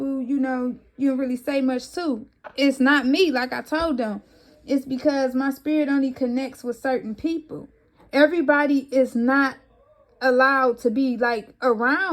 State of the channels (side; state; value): both; identical; correlation 1.00